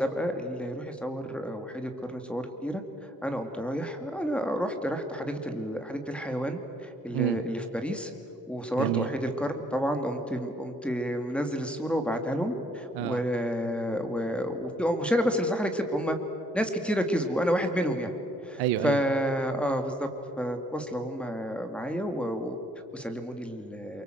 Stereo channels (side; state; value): both; normal; correlation 0.65